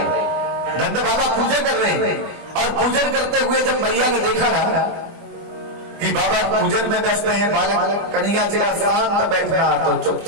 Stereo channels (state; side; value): late; left; 24 ms